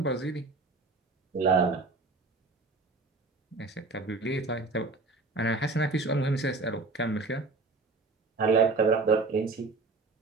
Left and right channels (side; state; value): left; quieter; 3.7 dB